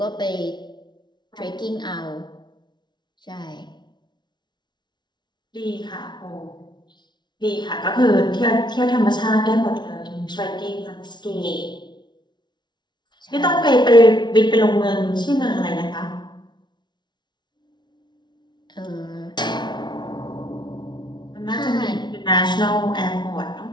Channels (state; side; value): late; right; 0.21 ms